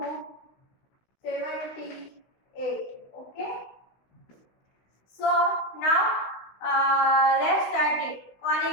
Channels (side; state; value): right; late; 16 ms